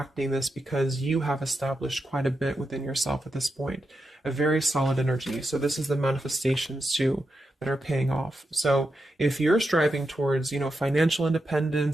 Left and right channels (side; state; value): both; normal; correlation 0.87